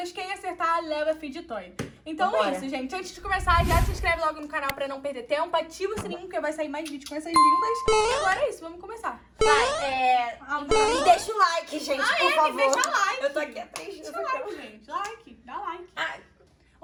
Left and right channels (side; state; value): both; identical; correlation 1.00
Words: Quem acertar, leva feed toy. Então Bora. é isso, gente. Antes de começar, já se inscreve logo no canal pra não perder tempo. Ativa o sininho, porque vai sair mais vídeos com essas lindas. E agora é isso, vamos começar. Vai, e deixa o like, gente, por favor. Deixa like. Eu tô aqui há 3 dias. Deixa like, gente. Like, dá like. Ah,